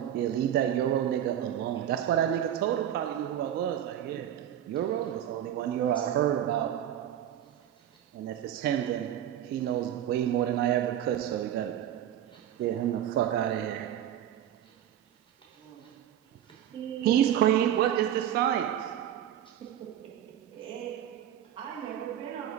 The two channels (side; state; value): left; quieter; 10.8 dB